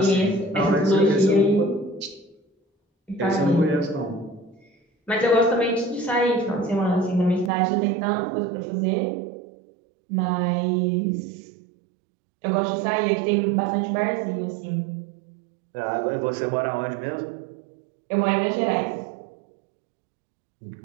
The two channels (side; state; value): left; drops out; at 7.5 s